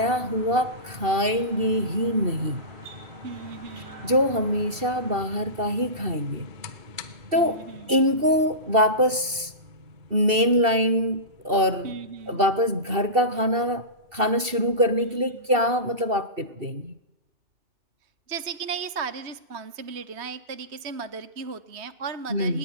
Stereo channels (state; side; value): late; left; 2.7 ms